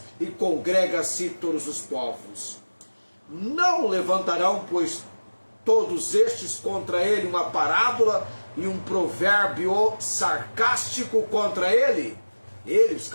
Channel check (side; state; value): both; inverted; correlation -1.00